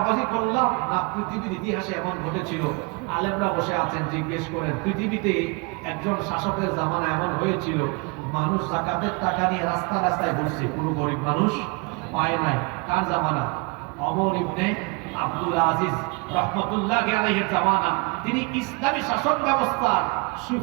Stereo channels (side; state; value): left; quieter; 30.4 dB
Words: করলাম না পৃথিবীর ইতিহাসে এমন ঘটেছিল? আলেমরা বসে আছেন, জিজ্ঞেস করেন পৃথিবীতে একজন শাসকের জামানা এমন হয়েছিল মানুষ যাকাতের টাকা নিয়ে রাস্তা রাস্তায় ঘুরছে, কোনো গরিব মানুষ পায় নাই। কার জামানা? ওমর ইবনে আব্দুল আজিজ রহমতুল্লাহি আলাইহির জামানা। তিনি ইসলামী শাসন ব্যবস্থার